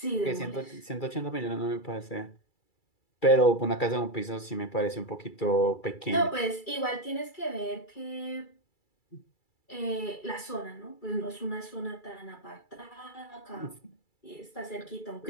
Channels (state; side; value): late; right; 2.3 ms